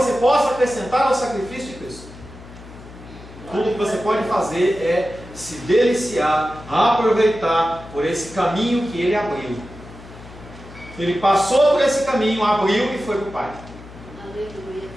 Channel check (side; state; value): left; noise; hum, 17 dB below the sound